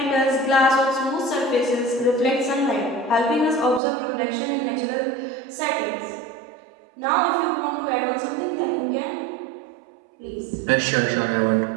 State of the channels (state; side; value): drops out; left; at 3.8 s